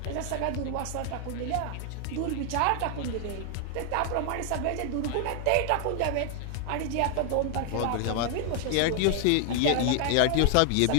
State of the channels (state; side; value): different; both; correlation 0.00